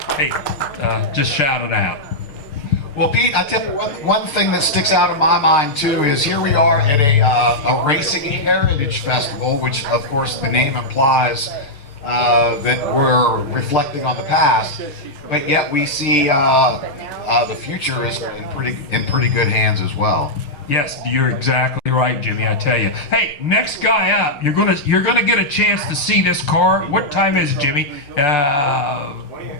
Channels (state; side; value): late; right; 6.8 ms